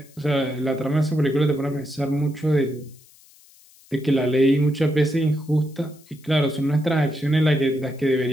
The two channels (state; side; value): noise; left; hiss, 27 dB below the sound